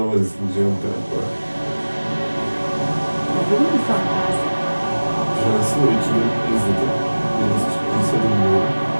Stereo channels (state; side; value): inverted; both; correlation -1.00